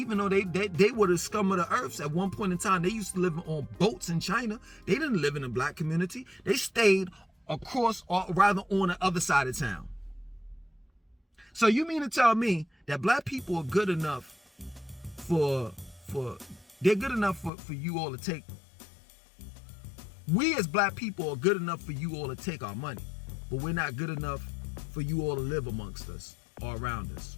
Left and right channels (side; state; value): right; drops out; at 17.5 s